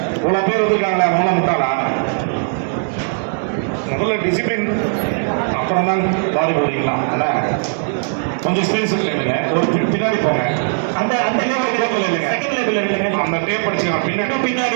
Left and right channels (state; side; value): silent; left; digital silence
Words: இவ்வளோ பேர் வந்துருக்காங்களா? ரொம்ப முட்டாளா? முதல்ல டிசிப்ளின், அப்புறம் தான் பாடி போடுறீங்களா? கொஞ்சம் ஸ்பேஸ் கேளுங்க. ஒரு பின்னாடி போங்க. அந்த அந்த லேபிள் கிடைக்கல இல்லைங்க, செகண்ட் லேபிள் இல்லைங்க. அந்த டேப் படிச்சுக்கலாம்.